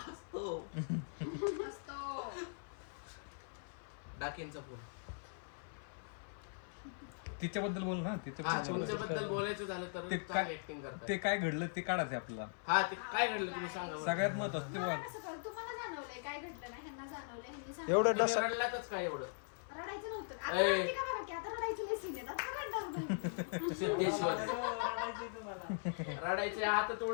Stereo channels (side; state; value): right; silent; 51 dB below the other